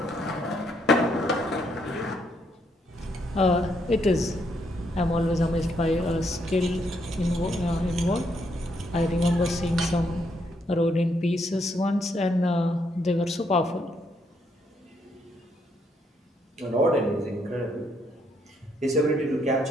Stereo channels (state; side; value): normal; both; correlation 0.74